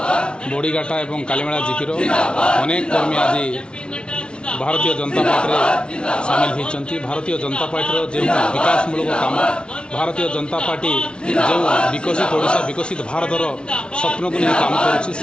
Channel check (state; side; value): late; right; 0.057 ms